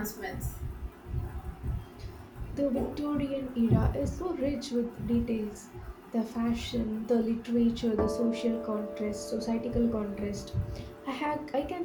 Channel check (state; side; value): identical; both; correlation 1.00